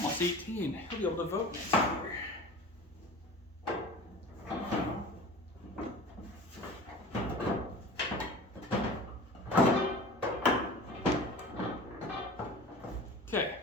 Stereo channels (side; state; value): both; normal; correlation 0.38